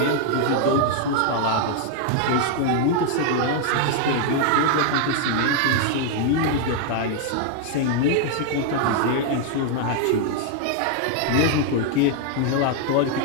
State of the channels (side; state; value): both; different; correlation 0.00